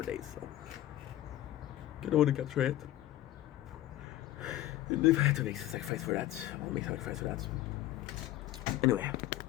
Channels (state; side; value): quieter; right; 14.4 dB